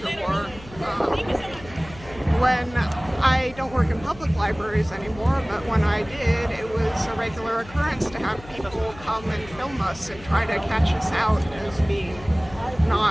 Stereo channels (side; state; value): left; noise; hum, 18 dB below the sound